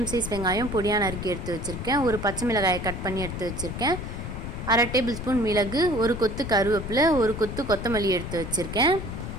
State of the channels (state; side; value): noise; left; rumble, 7 dB below the sound